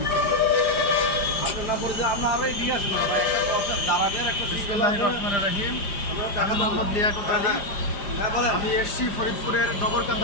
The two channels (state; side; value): late; right; 5.0 ms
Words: বিসমিল্লাহির রহমানির রহিম। আমি মোহাম্মদ লিয়াকত আলী। আমি এসছি ফরিদপুরের